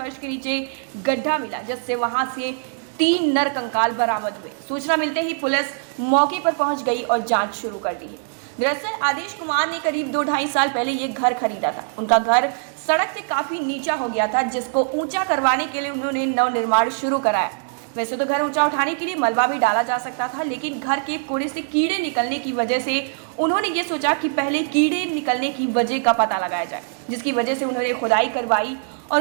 के नीचे गड्ढा मिला, जिससे वहां से 3 नर कंकाल बरामद हुए। सूचना मिलते ही पुलिस मौके पर पहुंच गई और जांच शुरू कर दी है। दरअसल आदेश कुमार ने करीब 2-2.5 साल पहले ये घर खरीदा था। उनका घर सड़क से काफी नीचा हो गया था, जिसको ऊंचा करवाने के लिए उन्होंने नवनिर्माण शुरू कराया। वैसे तो घर ऊंचा उठाने के लिए मलबा भी डाला जा सकता था, लेकिन घर के कोड़े से कीड़े निकलने की वजह से उन्होंने ये सोचा कि पहले कीड़े निकलने की वजह का पता लगाया जाए, जिसकी वजह से उन्होंने खुदाई करवाई।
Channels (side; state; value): left; silent; digital silence